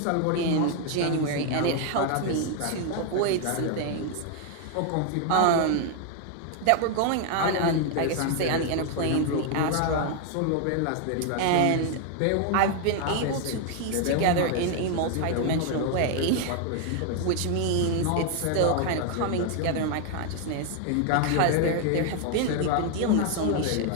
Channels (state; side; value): different; both; correlation 0.00